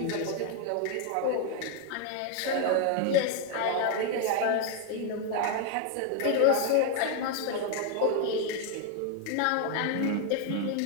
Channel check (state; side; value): different; both; correlation 0.01